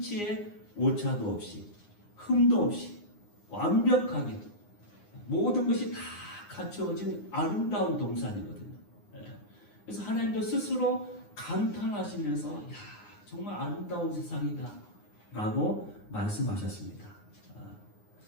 오차도 없이 흠도 없이 완벽하게 모든 것이 다 갖춰진 아름다운 동산이거든요. 그래서 하나님도 스스로 감탄하시면서 정말 아름다운 세상이다 라고 말씀하셨습니다.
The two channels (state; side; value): late; right; 9.7 ms